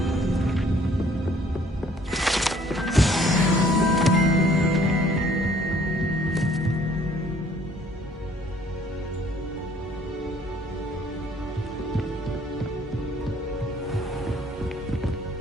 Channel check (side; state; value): both; normal; correlation 0.59